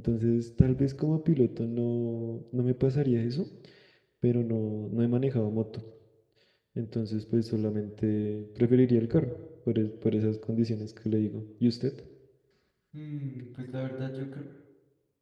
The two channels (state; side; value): identical; both; correlation 1.00